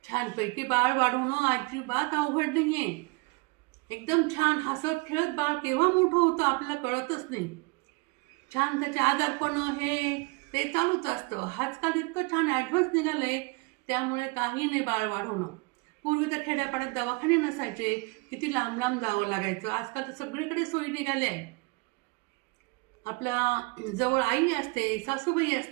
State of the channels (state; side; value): quieter; left; 27.7 dB